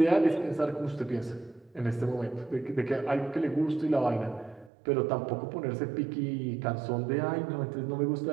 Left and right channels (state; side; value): drops out; left; at 4.7 s